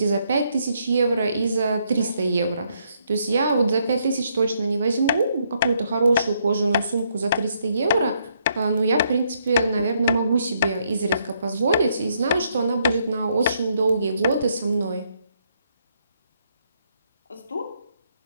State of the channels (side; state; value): both; inverted; correlation -0.74